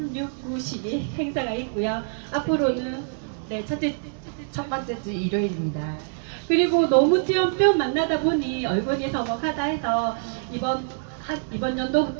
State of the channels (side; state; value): left; silent; digital silence